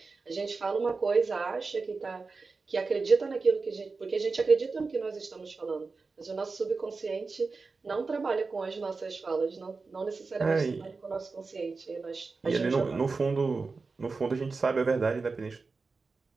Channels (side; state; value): left; quieter; 4.2 dB